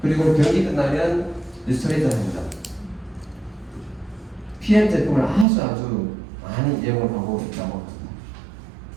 그리고 경기 끝나면 리스토레이트 한 잔, PM 제품을 아주 많이 이용을 하고 있다고 합니다.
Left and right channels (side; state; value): left; drops out; at 5.5 s